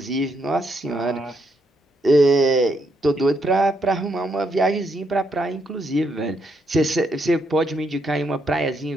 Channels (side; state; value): both; normal; correlation 0.76